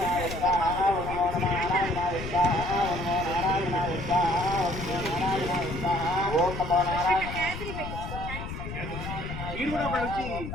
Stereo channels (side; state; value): left; noise; rumble, 8 dB below the sound